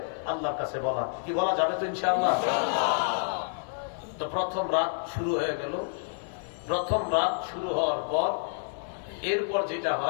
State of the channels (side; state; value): right; silent; 57 dB below the other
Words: আল্লাহর কাছে বলা, কি বলা যাবে তো ইনশাআল্লাহ। তো প্রথম রাত শুরু হয়ে গেল। প্রথম রাত শুরু হওয়ার পর এরপর যেটা